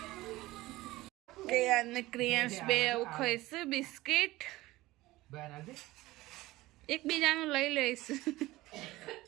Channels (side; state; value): left; quieter; 18.4 dB